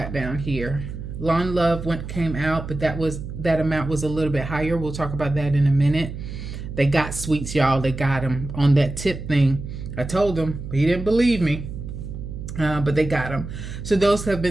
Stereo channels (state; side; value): noise; right; hum, 9 dB below the sound